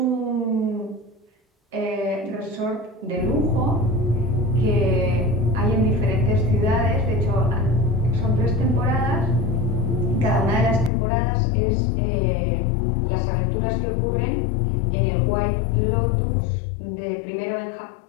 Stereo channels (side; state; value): right; drops out; at 10.9 s